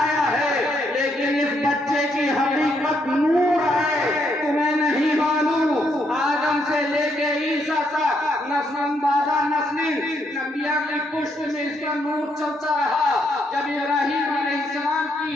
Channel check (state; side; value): normal; both; correlation 0.75